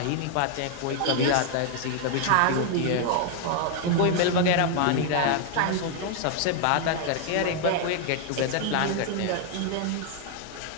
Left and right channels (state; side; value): different; both; correlation 0.00